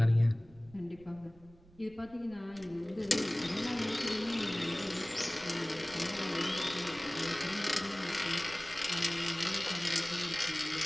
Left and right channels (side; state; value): right; noise; rumble, 24 dB below the sound